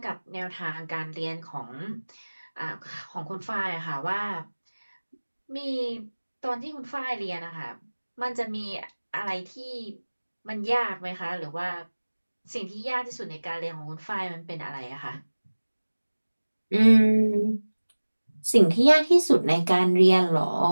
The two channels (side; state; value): both; inverted; correlation -1.00